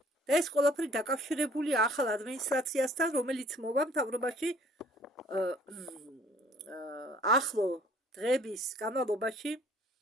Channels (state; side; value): normal; both; correlation 0.56